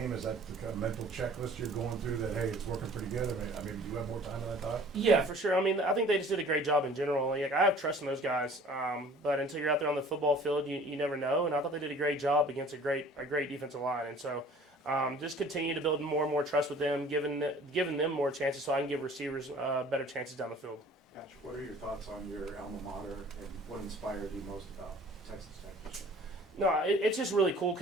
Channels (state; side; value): normal; both; correlation 0.49